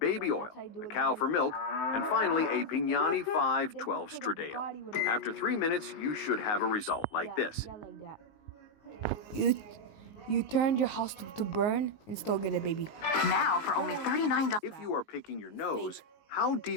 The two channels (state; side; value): late; right; 19 ms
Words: oil, a cow for milk, and finally a Pignani 512 Stradale. After 3 minutes, you should have a result like this. You turned your house to burn and still get a baby. Now for only $39. If you are picking your nose, how